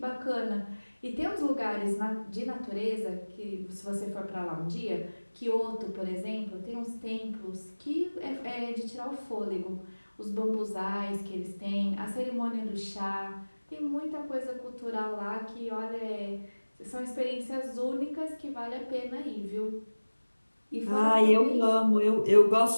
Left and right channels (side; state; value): both; inverted; correlation -1.00